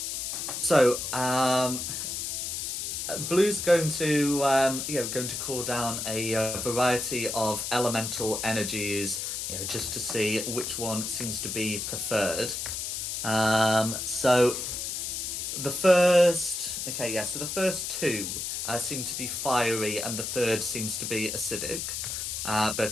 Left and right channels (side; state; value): left; noise; hiss, 3 dB below the sound